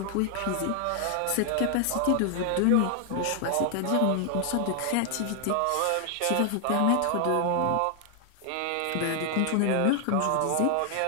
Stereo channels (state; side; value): different; both; correlation 0.00